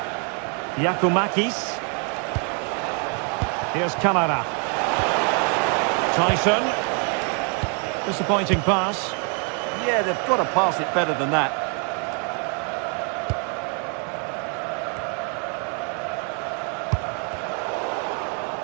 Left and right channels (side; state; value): left; quieter; 38.6 dB